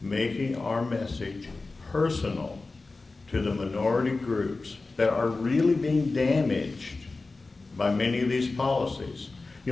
making our message personal to the minority groups that are really being damaged by many of these policies.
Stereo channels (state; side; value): quieter; right; 3.6 dB